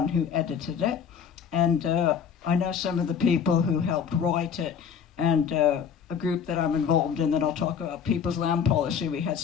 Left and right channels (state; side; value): quieter; right; 7.3 dB